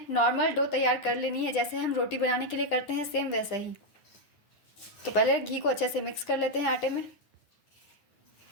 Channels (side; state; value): right; late; 9.9 ms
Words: नॉर्मल डो तैयार कर लेनी है, जैसे हम रोटी बनाने के लिए करते हैं सेम वैसा ही। तो पहले घी को अच्छे से मिक्स कर लेते हैं आटे में।